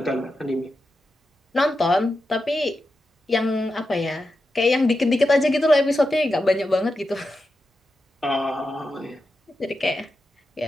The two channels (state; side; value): normal; both; correlation 0.89